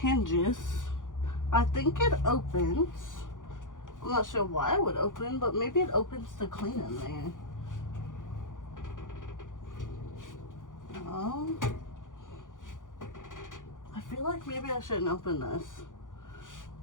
I think it opens. I'm not sure why it would open, but maybe it opens to clean in there. feel like maybe I shouldn't open this.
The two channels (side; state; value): right; late; 0.88 ms